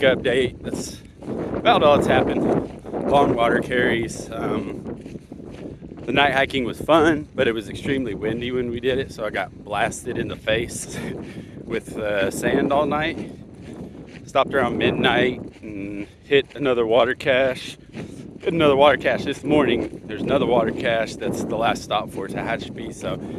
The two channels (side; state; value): both; identical; correlation 1.00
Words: That's about all that's happened. Long water carries. The night hiking was fun, but it was extremely windy when we did it, so I got blasted in the face with sand all night. Stopped around midnight and hit another water cache. Hit another water cache this morning. There's another water cache that's the last stop for Tehachapi. So